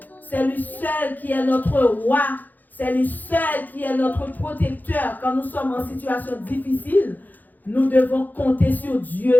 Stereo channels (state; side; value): late; right; 0.084 ms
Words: C'est lui seul qui est notre roi. C'est lui seul qui est notre protecteur. Quand nous sommes en situation difficile, nous devons compter sur